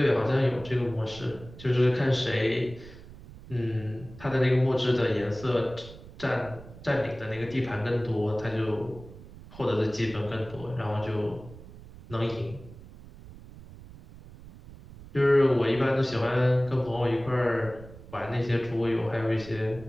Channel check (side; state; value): right; noise; rumble, 17 dB below the sound